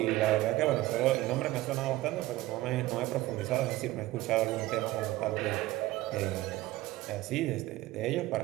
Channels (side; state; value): left; quieter; 17.4 dB